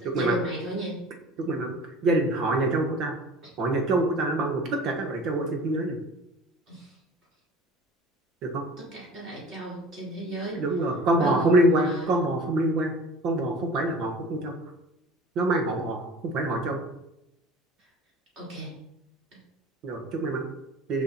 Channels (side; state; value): both; normal; correlation 0.42